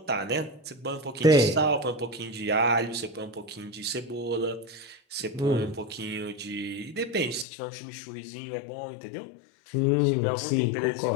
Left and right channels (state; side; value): drops out; right; at 7.5 s